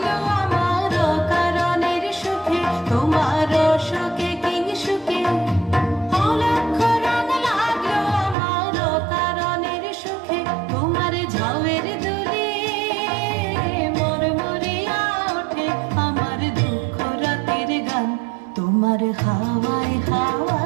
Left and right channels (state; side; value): drops out; left; at 8.3 s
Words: আমার কারণের সুখে। তোমার রসকে কিংসুকে অলক্ষ রং লাগলো আমার কারণের সুখে। তোমার ঝাউয়ের দোলে মরমরিয়া ওঠে আমার দুঃখ রাতের গান। তোমার হাওয়ায়